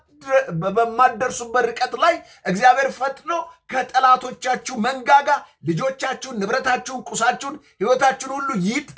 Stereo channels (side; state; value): both; identical; correlation 1.00